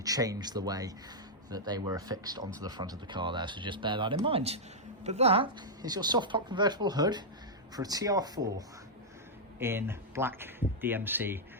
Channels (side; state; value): both; normal; correlation -0.07